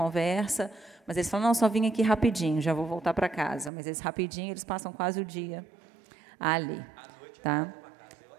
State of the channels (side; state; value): left; drops out; at 3.7 s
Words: mas eles falam, não, só vim aqui rapidinho, já vou voltar para casa. Mas eles rapidinho, eles passam quase o dia ali. Tá?